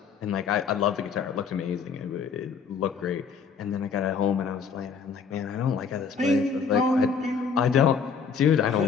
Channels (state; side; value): quieter; right; 6.0 dB